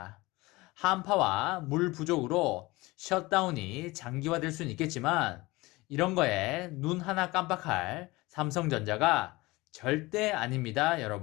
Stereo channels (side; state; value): right; quieter; 21.5 dB